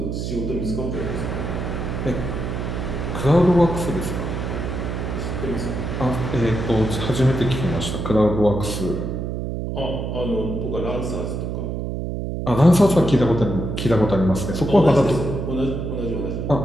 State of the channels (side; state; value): right; noise; hum, 3 dB below the sound